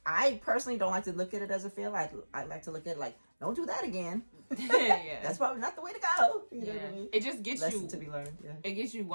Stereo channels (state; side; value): inverted; both; correlation -1.00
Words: I personally don't like to look at it as a fail. I like to look at it like, don't do that again. That's probably not the way to go. You know what I mean? It just gets Lesson to be learned. It gets you